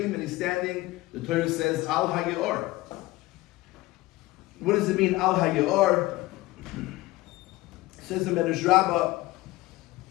and he's standing, the Torah says, Al HaYeor. What does it mean, Al HaYeor? Says the Medrash Rabbi,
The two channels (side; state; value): right; quieter; 18.9 dB